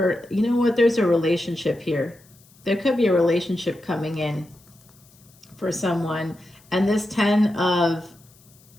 know what, there's a relationship here. There could be a relationship coming in for someone. And this 10 of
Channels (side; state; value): left; noise; hiss, 29 dB below the sound